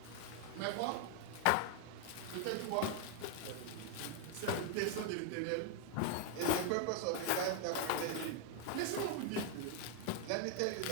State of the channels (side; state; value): both; different; correlation 0.00